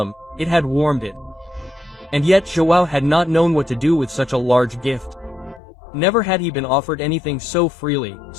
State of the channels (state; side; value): drops out; right; at 5.6 s